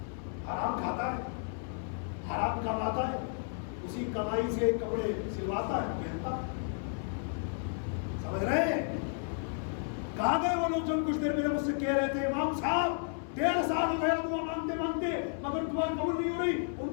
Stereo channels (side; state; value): right; silent; 56 dB below the other